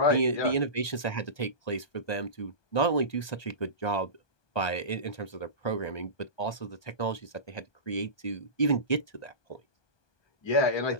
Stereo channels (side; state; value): right; late; 1.2 ms